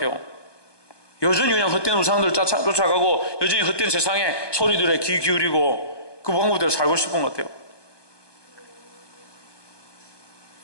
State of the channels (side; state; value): right; late; 1.2 ms